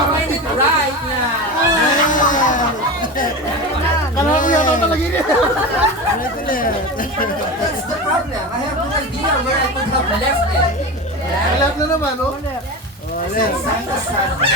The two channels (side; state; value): both; normal; correlation 0.25